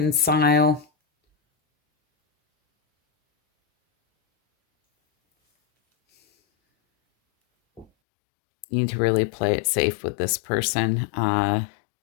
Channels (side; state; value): right; drops out; at 7.9 s